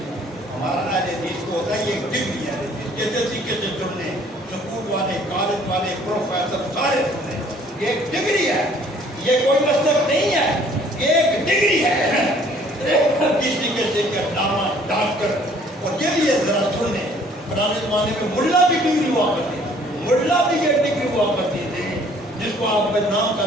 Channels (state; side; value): normal; both; correlation 0.58